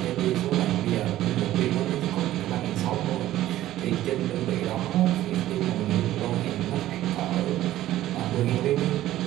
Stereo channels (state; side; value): quieter; left; 14.2 dB